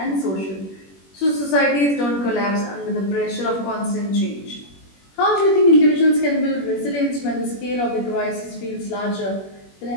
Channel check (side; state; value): right; late; 21 ms